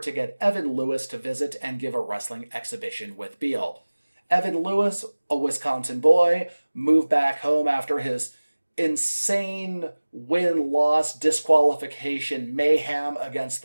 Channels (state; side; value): inverted; both; correlation -1.00